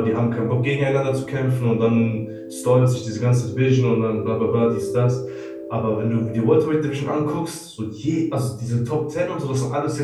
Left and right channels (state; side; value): identical; both; correlation 1.00